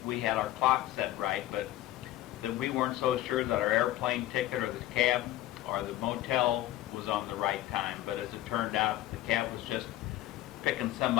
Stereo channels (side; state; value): right; quieter; 14.9 dB